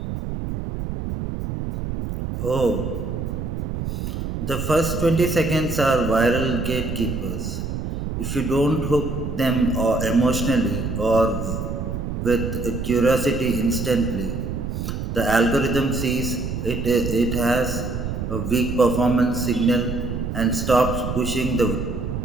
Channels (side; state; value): right; noise; rumble, 4 dB below the sound